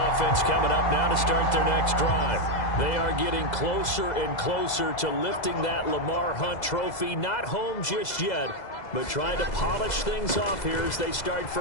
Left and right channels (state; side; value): late; right; 2.0 ms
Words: coming up now to start their next drive. They are getting closer and closer to lifting that Lamar Hunt trophy. Not home just yet, but trying to polish things off here as they start